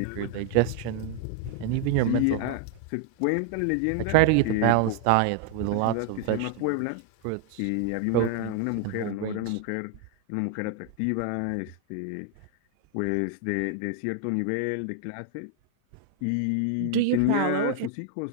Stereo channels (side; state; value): both; different; correlation 0.00